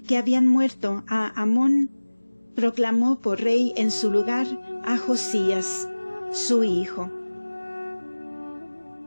que habían muerto a Amón, proclamó por rey en su lugar a Josías, su hijo.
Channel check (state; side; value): inverted; both; correlation -1.00